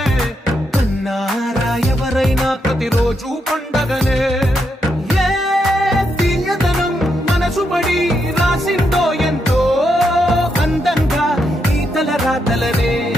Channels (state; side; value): normal; both; correlation 0.81